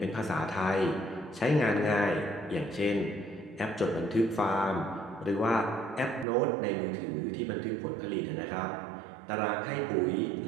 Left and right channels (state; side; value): drops out; left; at 6.2 s